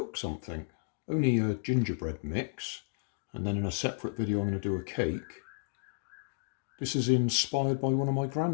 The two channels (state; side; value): silent; right; digital silence